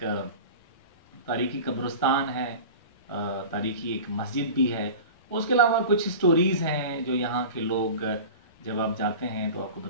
तारीखी कब्रिस्तान है, तारीखी एक मस्जिद भी है। उसके अलावा कुछ स्टोरीज़ हैं जो यहाँ के लोग जब आप जाते हैं तो आपको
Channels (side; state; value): both; inverted; correlation -0.35